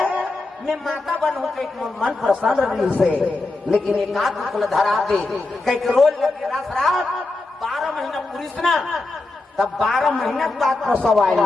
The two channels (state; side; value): quieter; right; 3.2 dB